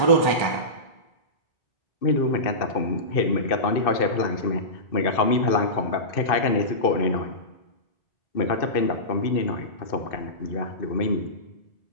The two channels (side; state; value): right; late; 2.6 ms